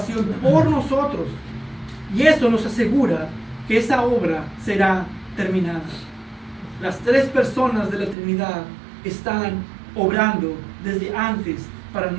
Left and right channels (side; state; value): left; drops out; at 8.2 s